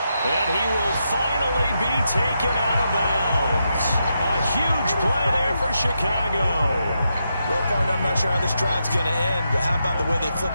And he will finally be taken out of bounds. A huge play there for Chicago. Well, partner, I'm not sure how this drive's going to end, but how about the way they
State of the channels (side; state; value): both; inverted; correlation -0.84